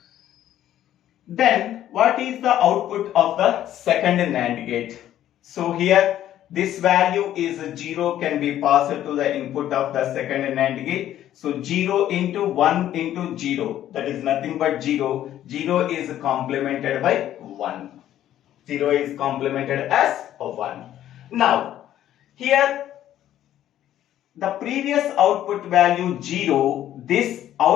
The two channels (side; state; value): right; quieter; 12.0 dB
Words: Then what is the output of the second NAND gate? So here this value is 0 can be passed to the input of the second NAND gate. So 0 into 1 into 0, that is nothing but 0. 0 is complemented by 1. 0 is complemented as 1. Now here the previous output value 0, this